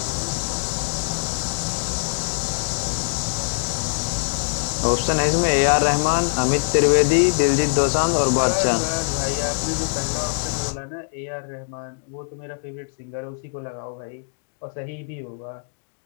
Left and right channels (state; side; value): silent; right; digital silence